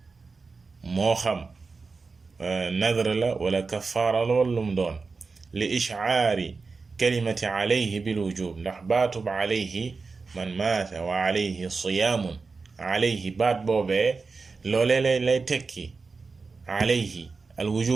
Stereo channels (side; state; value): left; quieter; 4.4 dB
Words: moo xam nadr la wala kafaara la wala lum doon li ishcaari kalimati alayhi bil wujub ndax baatub alayhi man maata wa alayhi siyaamun alayhi baat boobee loolee lay tekki alayhi al